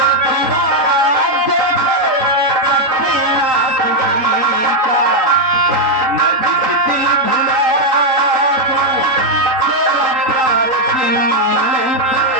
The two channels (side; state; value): left; late; 3.8 ms